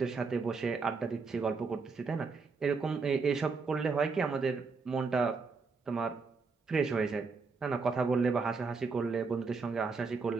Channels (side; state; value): left; quieter; 4.6 dB